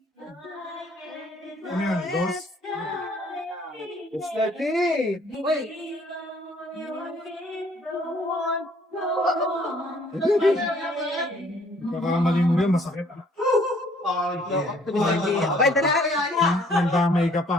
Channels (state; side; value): normal; both; correlation 0.60